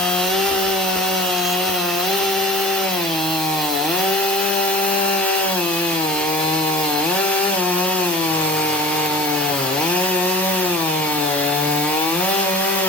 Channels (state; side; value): normal; both; correlation 0.39